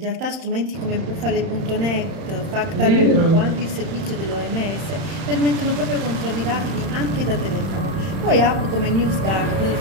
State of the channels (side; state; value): left; late; 31 ms